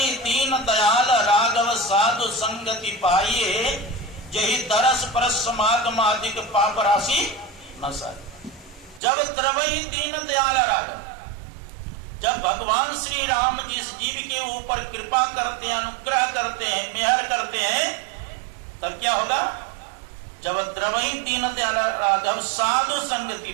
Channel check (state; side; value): drops out; left; at 9.0 s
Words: दीन दयाल राघव साधु संगति पाइए, यही दरस परस समागमादिक पाप राशि न सारी। जब द्रवई दीन दयाल राघव, जब भगवान श्री राम जिस जीव के ऊपर कृपा करते हैं, अनुग्रह करते हैं, मेहर करते हैं, तब क्या होगा? जब द्रवई दीन दयाल राघव साधु संगति